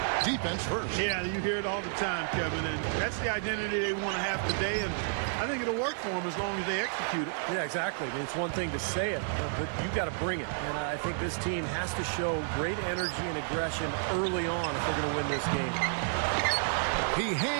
Defense first. Yeah, you hear it all the time, Kevin, and that's the identity they want to have today, and I think it'll work for them as long as they execute it. Yeah, exactly. I mean, it's one thing to say it, but you got to bring it. And I think this team has to show great energy and aggression early on if they're going to win this game. He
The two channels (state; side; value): silent; left; digital silence